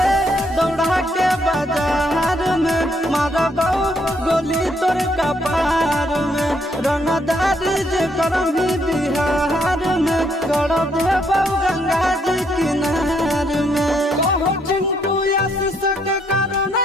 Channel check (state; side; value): normal; both; correlation 0.72